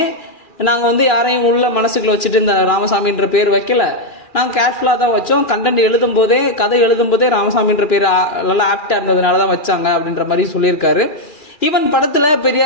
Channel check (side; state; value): right; late; 2.4 ms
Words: நாங்கள் வந்து யாரையும் உள்ள மனசுக்குள்ள வச்சுட்டு இந்த ராமசாமின்ற பேர் வைக்கல. நாங்கள் கேர்ஃபுல்லாக தான் வச்சோம். கண்டென்ட் கதை எழுதும் போதே ராமசாமின்ற பேர் நல்லா ஆப்டா இருந்ததுனால தான் வச்சாங்க அப்படின்ற மாதிரி சொல்லியிருக்காரு. ஈவன் படத்துல